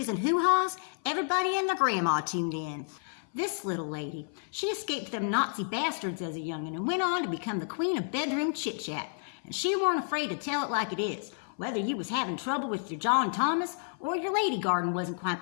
and hoo-haws, everybody and their grandma tuned in. This little lady, she escaped them Nazi bastards as a young'un and went on to become the queen of bedroom chit-chat. And she weren't afraid to tell it like it is, whether you was having trouble with your John Thomas or your lady garden wasn't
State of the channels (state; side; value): silent; right; 55 dB below the other